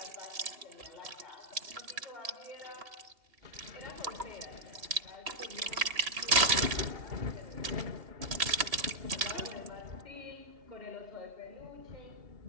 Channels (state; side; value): late; left; 2.8 ms